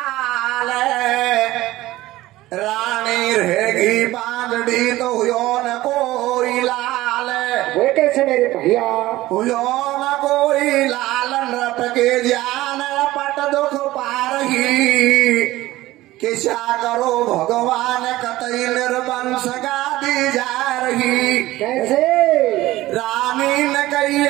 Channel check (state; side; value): quieter; left; 17.1 dB